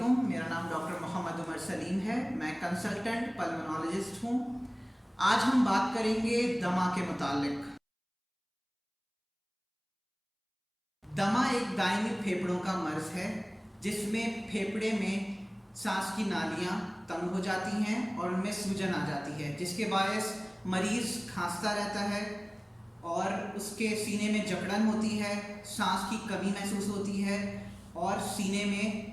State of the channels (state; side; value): identical; both; correlation 1.00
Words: मेरा नाम डॉक्टर मोहम्मद उमर सलीम है। मैं कंसल्टेंट पल्मोनोलॉजिस्ट हूँ। आज हम बात करेंगे दमा के मुतालिक। दमा एक दायमी फेफड़ों का मर्ज़ है जिसमें फेफड़े में सांस की नालियाँ तंग हो जाती हैं और उनमें सूजन आ जाती है, जिसके बायस मरीज़ खांसता रहता है और उसके सीने में जकड़न होती है, सांस की कमी महसूस होती है और सीने में